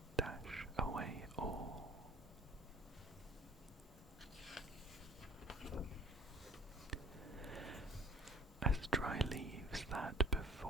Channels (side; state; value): both; normal; correlation 0.50